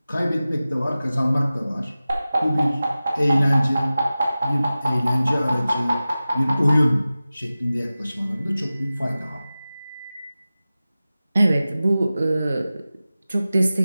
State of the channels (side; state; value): both; inverted; correlation -0.96